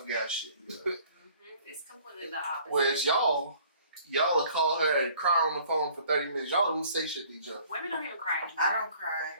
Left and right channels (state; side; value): inverted; both; correlation -0.55